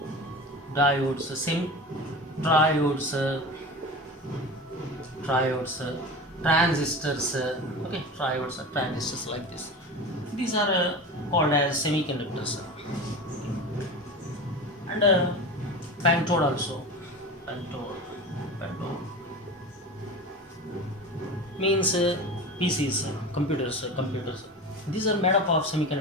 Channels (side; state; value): both; normal; correlation 0.30